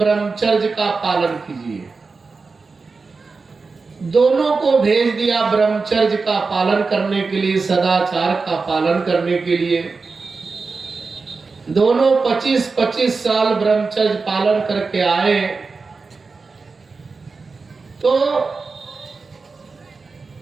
का पालन कीजिए। दोनों को भेज दिया ब्रह्मचर्य का पालन करने के लिए, सदाचार का पालन करने के लिए। दोनों 25-25 साल ब्रह्मचर्य पालन करके आए। तो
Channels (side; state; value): left; quieter; 4.3 dB